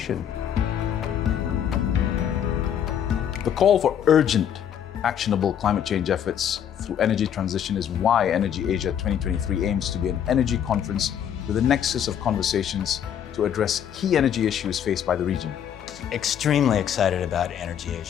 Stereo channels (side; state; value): right; quieter; 9.2 dB